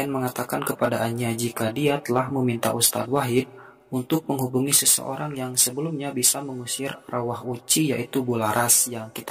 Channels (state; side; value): identical; both; correlation 1.00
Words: mengatakan kepada Anya jika dia telah meminta Ustadz Wahid untuk menghubungi seseorang yang sebelumnya bisa mengusir arwah Uci yaitu Bularas yang